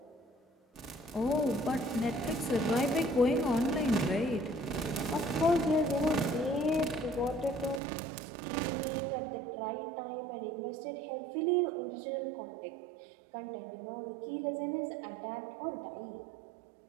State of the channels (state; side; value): drops out; left; at 7.8 s